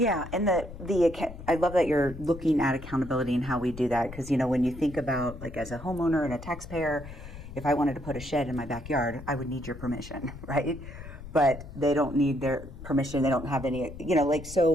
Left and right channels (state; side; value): noise; left; rumble, 13 dB below the sound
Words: I love that you're looking at accountability and how we do that, because when you think about, like, as a homeowner and a taxpayer, if I wanted to put a shed in my backyard, I would need your permission, right? But they don't need their permission. They don't have any,